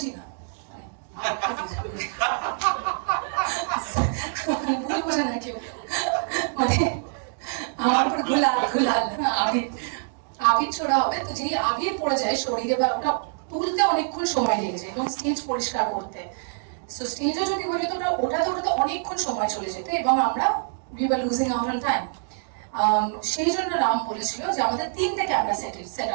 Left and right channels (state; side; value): silent; left; digital silence